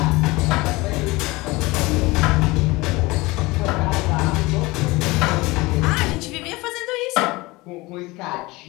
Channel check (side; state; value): right; quieter; 22.1 dB